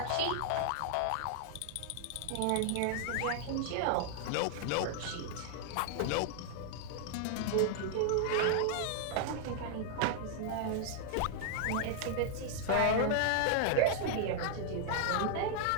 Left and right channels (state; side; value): different; both; correlation -0.01